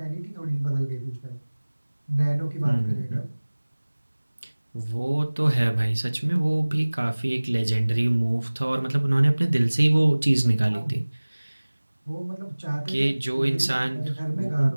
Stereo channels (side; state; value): both; inverted; correlation -1.00